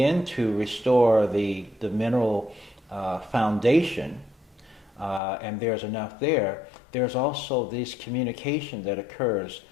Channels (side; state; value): right; drops out; at 5.2 s